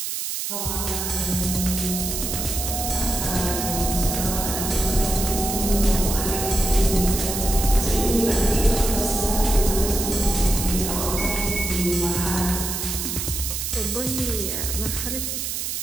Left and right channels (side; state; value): right; noise; hiss, 3 dB below the sound